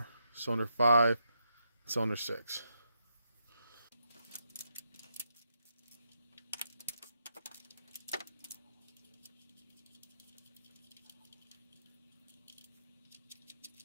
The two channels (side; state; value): both; inverted; correlation -0.80